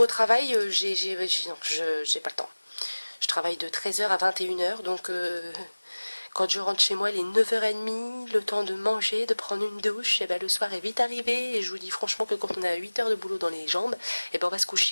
travail, non, j'ai pas le temps. Je travaille de 13h à 21h, donc quand je rentre chez moi, il est 9h30, le temps de manger, de prendre une douche, et ben le soir est vite arrivé, et je vous dis franchement que quand on a 8 heures de boulot dans les jambes, et ben on va se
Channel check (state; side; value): inverted; both; correlation -1.00